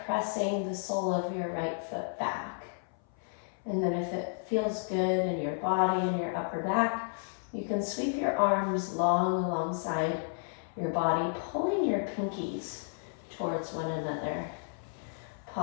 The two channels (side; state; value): right; silent; 56 dB below the other